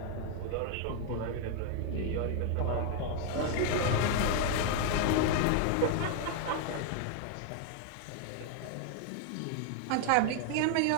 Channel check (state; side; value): different; both; correlation 0.00